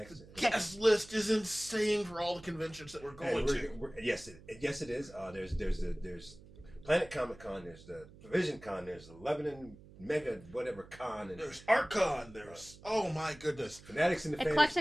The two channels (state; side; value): noise; right; hum, 20 dB below the sound